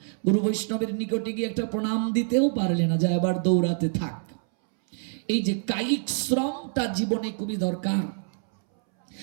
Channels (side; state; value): left; silent; 61 dB below the other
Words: গুরু বৈষ্ণবের নিকটে গিয়ে একটা প্রণাম দিতেও পারলে না, যা এবার দৌড়াতে থাক। এই যে কায়িক শ্রমটা জীবনে খুবই দরকার।